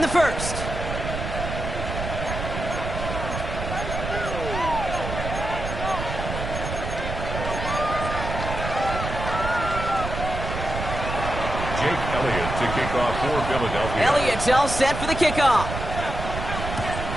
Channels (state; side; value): noise; right; rumble, 5 dB below the sound